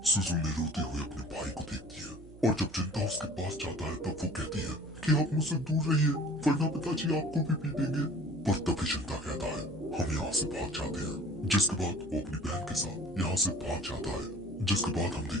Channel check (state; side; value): noise; right; hum, 18 dB below the sound